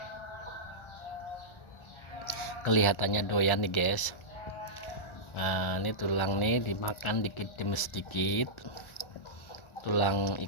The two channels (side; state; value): right; late; 1.4 ms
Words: kelihatannya doyan nih guys. Nah, ini tulang nih dimakan dikit demi sedikit, tulang